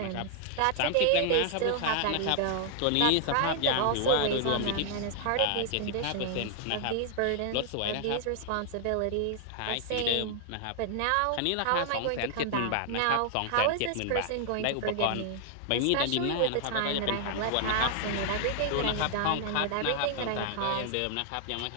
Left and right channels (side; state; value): both; different; correlation 0.00